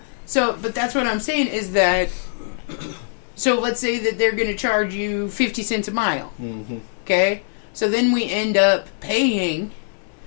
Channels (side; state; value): right; silent; 62 dB below the other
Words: So, but that's what I'm saying is that. So let's say that they're going to charge you 50 cents a mile. Mm-hmm. Okay? So then we end up paying